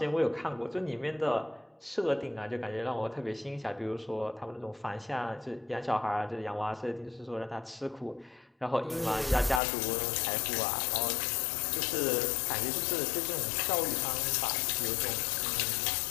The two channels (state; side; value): drops out; right; at 9.6 s